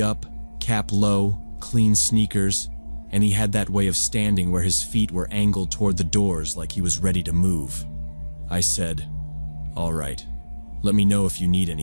up, cap low, clean sneakers, and he had that way of standing where his feet were angled toward the doors like he was ready to move. I said, "All right, let me know if you need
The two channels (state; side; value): inverted; both; correlation -1.00